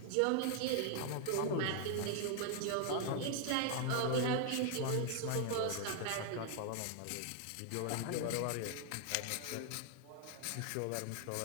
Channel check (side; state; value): both; different; correlation 0.00